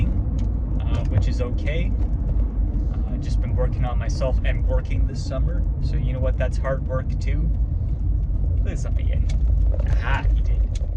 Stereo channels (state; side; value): identical; both; correlation 1.00